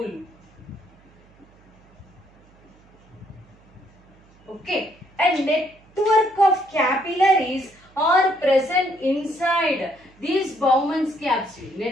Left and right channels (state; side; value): noise; right; hum, 29 dB below the sound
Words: Okay, a network of capillaries are present inside these Bowman's capsule.